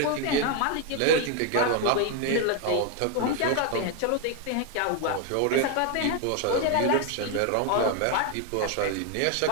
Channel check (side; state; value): both; different; correlation 0.01